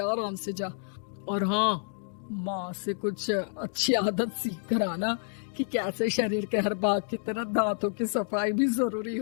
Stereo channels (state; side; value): silent; right; digital silence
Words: आराम से जा। और हाँ, माँ से कुछ अच्छी आदत सीख कर आना कि कैसे शरीर के हर भाग की तरह दांतों की सफाई भी जरूरी